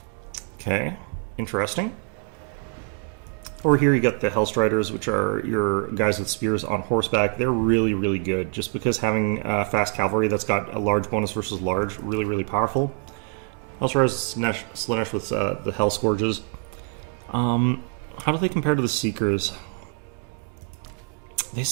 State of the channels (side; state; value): left; quieter; 34.3 dB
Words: Okay, interesting. Over here you got the Hellstriders, which are your guys with spears on horseback. They're really good, just because having fast cavalry that's got a large bonus versus large, really powerful. Hellstriders Slanesh with the Hell Scourges. How do they compare to the Seekers? They